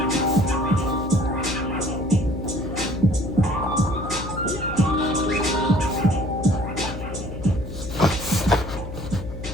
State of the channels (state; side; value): noise; left; hum, 9 dB below the sound